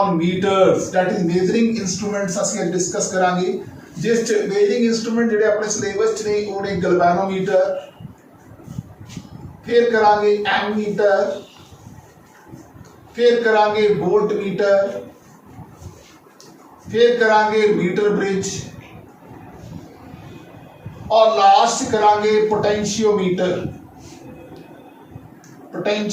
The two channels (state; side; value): identical; both; correlation 1.00